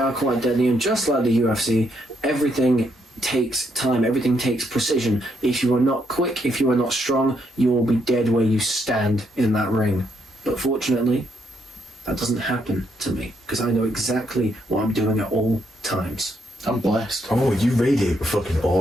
quite deadly, and just like the UFC, everything takes time, everything takes precision. If you are not quick, if you are not strong, you will be dead where you stand in that ring. But fortunately, that doesn't happen to me, because I know exactly what I'm doing at all times. I'm blessed. Oh, you radiate with fucking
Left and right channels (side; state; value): both; normal; correlation 0.75